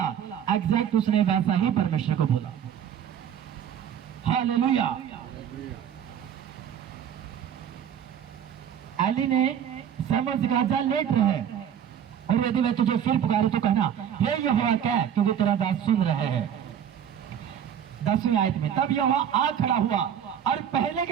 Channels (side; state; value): left; quieter; 9.1 dB